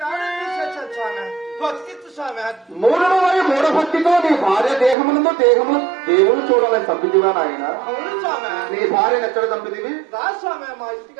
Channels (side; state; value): left; drops out; at 5.0 s